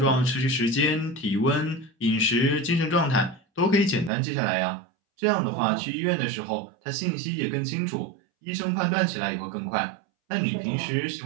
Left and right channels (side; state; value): left; drops out; at 4.1 s